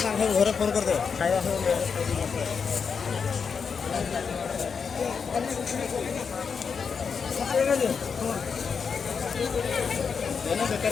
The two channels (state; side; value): quieter; right; 6.0 dB